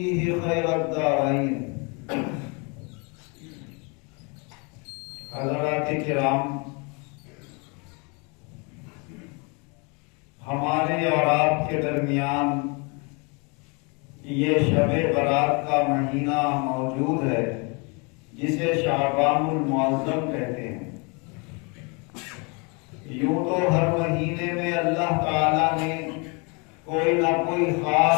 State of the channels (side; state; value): right; quieter; 32.1 dB